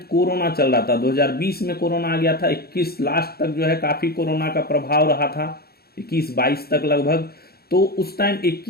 कोरोना चल रहा था। 2020 में कोरोना आ गया था, 21 लास्ट तक जो है काफी कोरोना का प्रभाव रहा था, 21-22 तक लगभग। तो उस टाइम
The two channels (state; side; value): late; right; 0.45 ms